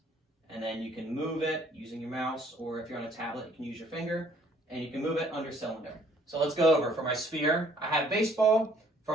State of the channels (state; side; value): normal; both; correlation 0.60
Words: and then you can move it using your mouse, or if you're on a tablet, you can use your finger, and you can move it under cylinder. So let's go over. For my sphere, I have baseball.